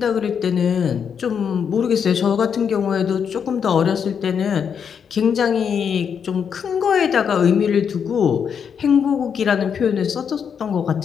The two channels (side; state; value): right; quieter; 7.2 dB